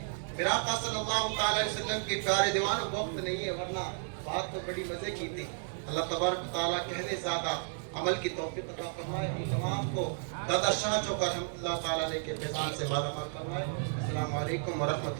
फिर आका सल्लल्लाहु अलैहि वसल्लम के प्यारे दीवानों, वक्त नहीं है वरना बात तो बड़ी मजे की थी। अल्लाह तबारक व तआला कहने ज़्यादा अमल की तौफीक अता फरमाए। हम तमाम को दादा शाह चौका रहमतुल्लाह ताला अलैह के फैज़ान से मालामाल फरमाए। अस्सलामु अलैकुम व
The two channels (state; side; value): silent; left; digital silence